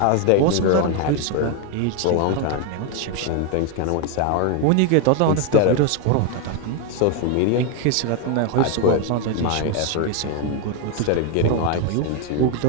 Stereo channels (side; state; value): both; different; correlation 0.01